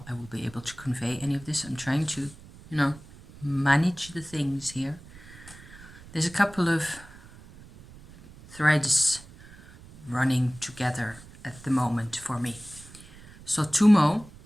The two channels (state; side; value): noise; right; rumble, 20 dB below the sound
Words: I will be able to convey any of this. I'm trying to, manage the things here. There's a couple of threads running together at the moment for me. So Tummo,